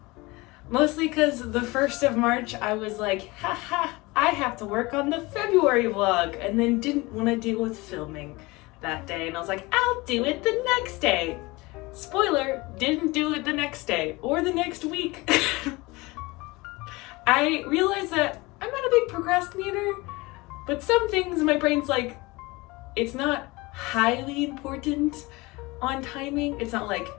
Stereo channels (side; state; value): right; quieter; 23.1 dB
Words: Mostly because the 1st of March I was like, haha, I have to work on the February vlog, and then didn't want to deal with filming that day. And I was like, I'll do it the next day. Spoiler, didn't do it the next day or the next week. I realized that I'm not a big procrastinator, but some things my brain's like, it's not highly important on timing. It's not like